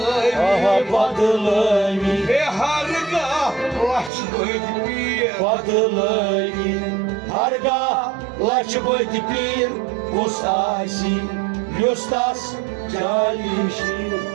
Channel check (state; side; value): drops out; left; at 4.1 s